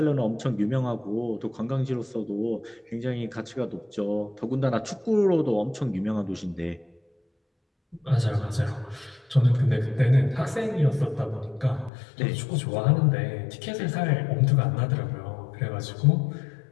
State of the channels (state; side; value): drops out; right; at 11.9 s